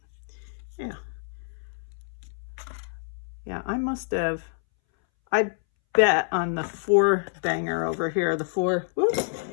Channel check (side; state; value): right; silent; 60 dB below the other